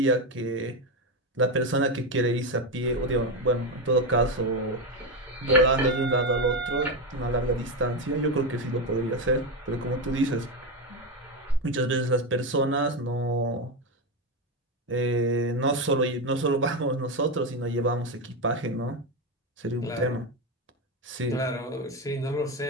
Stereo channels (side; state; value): both; normal; correlation 0.12